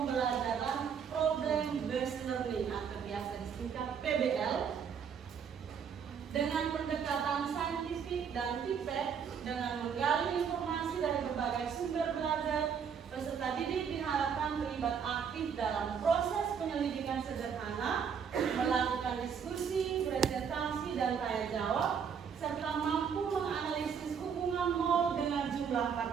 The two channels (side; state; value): left; quieter; 7.1 dB